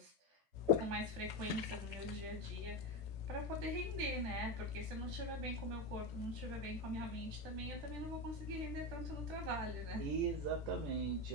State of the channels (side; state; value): left; late; 14 ms